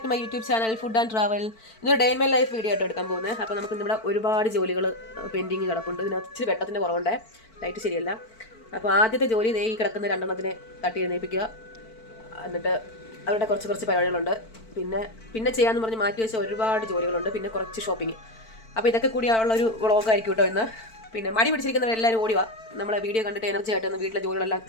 to my YouTube channel food and travel. ഇന്നൊരു day in my life video ആയിട്ട് എടുക്കാൻ പോകുന്നത്. അപ്പോൾ നമുക്ക് ഇവിടെ ഒരുപാട് ജോലികൾ പെൻഡിങ് കിടപ്പുണ്ട്. ഇതിനകത്ത് ഇച്ചിരി വെട്ടത്തിൻ്റെ കുറവുണ്ട്, ലൈറ്റ് ശരിയല്ല. അപ്പോൾ ആദ്യത്തെ ജോലി ഈ കിടക്കുന്ന രണ്ടെണ്ണത്തിനെ തട്ടി എഴുന്നേൽപ്പിക്കുക. എന്നിട്ട് അവരുടെ കുറച്ച് പരിപാടികളുണ്ട്. പിന്നെ ചെയ്യാമെന്ന് പറഞ്ഞ് മാറ്റി വെച്ച ഒരുപാട് ജോലികളുണ്ട്. പിന്നെ കുറച്ച് ഷോപ്പിംഗ്. അപ്പോൾ ഇതൊക്കെ കൂടിയുള്ളൊരു വ്ളോഗായിരിക്കും കേട്ടോ ഇന്ന്. പിന്നെ മടി പിടിച്ചിരിക്കുന്നവരെല്ലാവരും ഓടി വാ. നമ്മളെ വീഡിയോ കണ്ടിട്ട് എനർജി ആയിട്ട് വീട്ടിലെ ജോലികളെല്ലാം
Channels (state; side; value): late; right; 4.5 ms